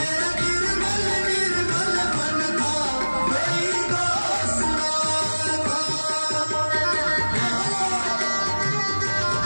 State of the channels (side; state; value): both; inverted; correlation -1.00